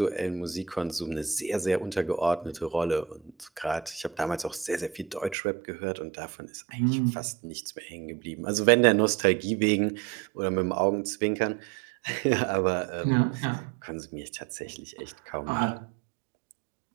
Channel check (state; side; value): drops out; left; at 5.4 s